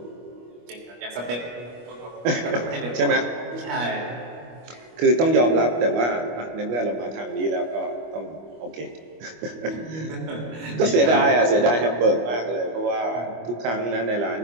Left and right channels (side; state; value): left; late; 25 ms